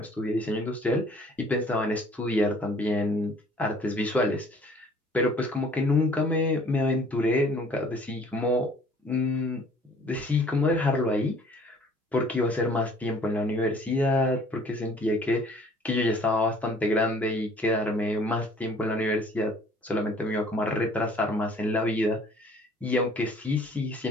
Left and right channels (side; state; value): both; normal; correlation 0.54